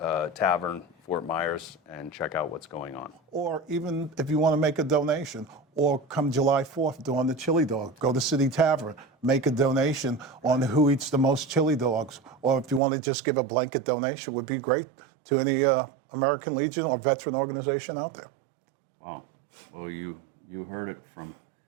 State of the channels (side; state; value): left; drops out; at 12.8 s